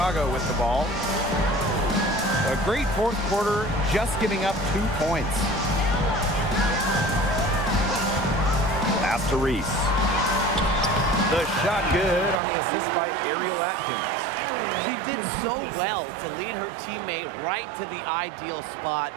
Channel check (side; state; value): left; drops out; at 12.4 s